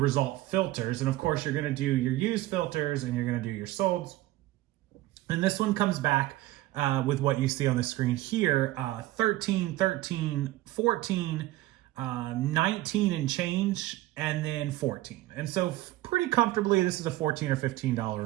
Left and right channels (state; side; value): quieter; left; 16.6 dB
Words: filters. And of course, you're going to do your used filters and you're going to do your solds. And this one comes back with what you see on the screen here, 13, 13, 14, 19 and change, and then 14. And so pretty comfortably, this is a $14 or $15